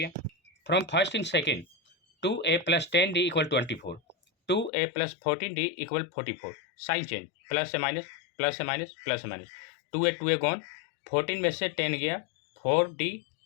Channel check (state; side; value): drops out; right; at 4.7 s